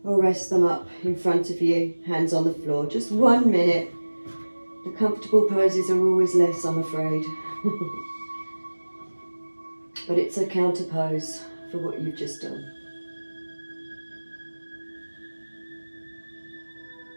or rest them up in front of you, hands on the floor. Just 1 minute. The comfortable poses are always less, I'm afraid. But it's a counter pose for what you've just done.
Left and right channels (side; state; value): both; inverted; correlation -1.00